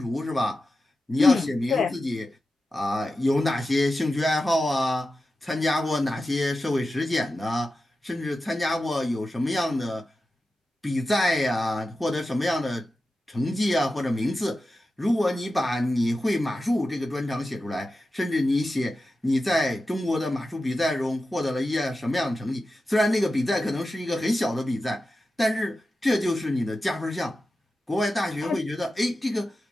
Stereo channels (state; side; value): normal; both; correlation 0.92